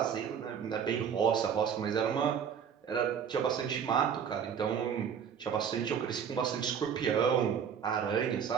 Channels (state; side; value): quieter; left; 7.7 dB